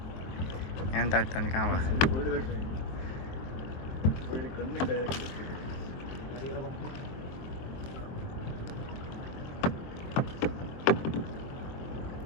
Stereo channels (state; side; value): late; right; 23 ms